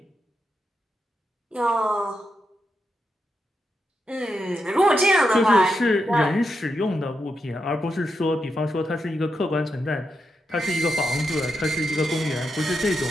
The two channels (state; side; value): normal; both; correlation 0.85